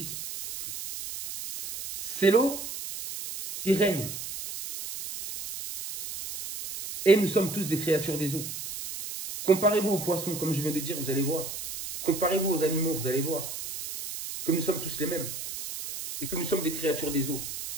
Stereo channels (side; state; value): right; noise; hiss, 8 dB below the sound